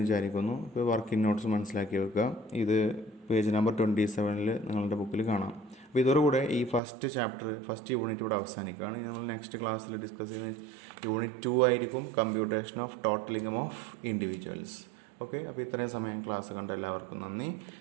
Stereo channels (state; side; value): drops out; left; at 6.8 s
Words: വിചാരിക്കുന്നു. ഇപ്പോൾ വർക്കിംഗ് നോട്ട്സ് മനസ്സിലാക്കി വെക്കുക. ഇത് പേജ് നമ്പർ 27 നിങ്ങളുടെ ബുക്കിൽ കാണാം. അപ്പോൾ ഇതോടുകൂടെ ഈ ഫസ്റ്റ് യൂണിറ്റ് ഇവിടെ അവസാനിക്കുകയാണ്. ഇനി നമ്മൾ നെക്സ്റ്റ് ക്ലാസ്സിൽ ഡിസ്കസ് ചെയ്യുന്ന യൂണിറ്റ് 2 ആയിരിക്കും, computation of total income of individuals. Okay, അപ്പോൾ ഇത്രയും സമയം ക്ലാസ് കണ്ട എല്ലാവർക്കും നന്ദി.